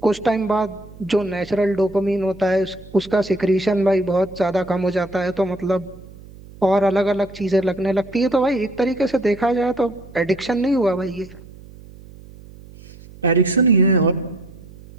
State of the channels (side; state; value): right; noise; hum, 20 dB below the sound